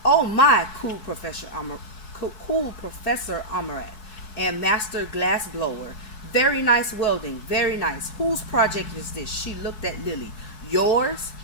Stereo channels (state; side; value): late; right; 4.7 ms